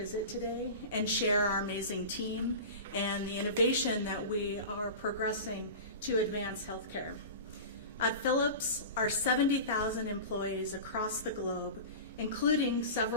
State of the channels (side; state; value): both; inverted; correlation -0.31